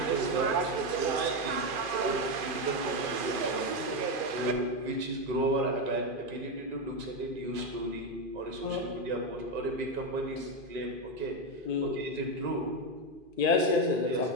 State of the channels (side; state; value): left; late; 2.4 ms